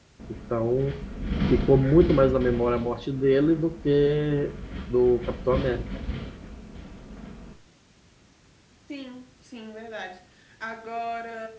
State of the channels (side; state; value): both; identical; correlation 1.00